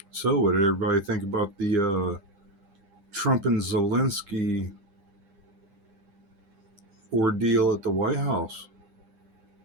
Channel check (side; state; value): left; late; 9.9 ms